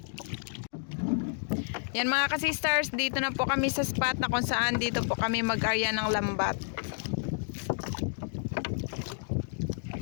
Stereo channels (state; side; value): silent; right; digital silence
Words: Yan mga ka-sisters, dito na po kami sa spot na kung saan dito po kami mag-arya ng lambat.